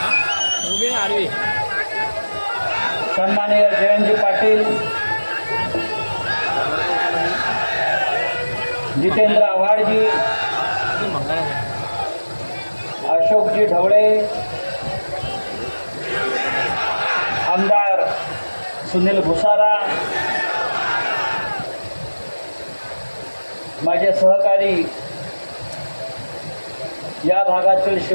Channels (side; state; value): both; inverted; correlation -1.00